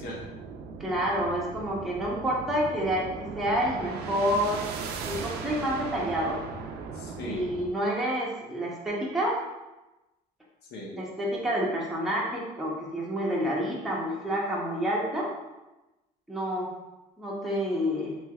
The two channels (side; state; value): both; normal; correlation 0.48